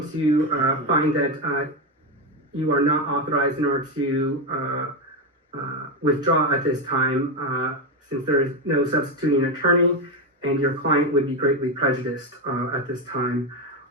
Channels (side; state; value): both; normal; correlation 0.10